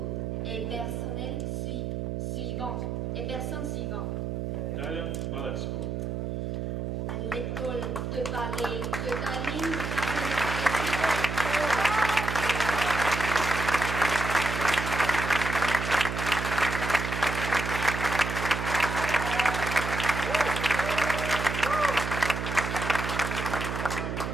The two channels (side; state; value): right; noise; hum, 3 dB below the sound